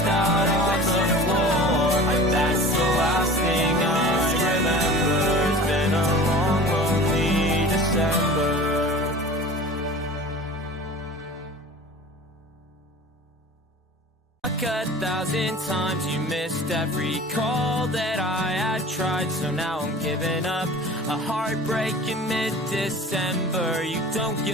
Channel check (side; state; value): both; normal; correlation 0.39